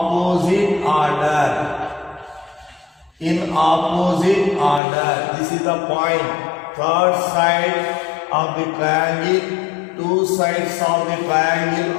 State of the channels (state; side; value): drops out; right; at 4.8 s